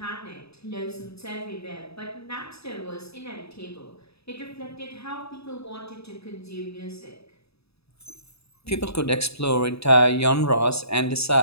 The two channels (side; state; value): right; late; 0.78 ms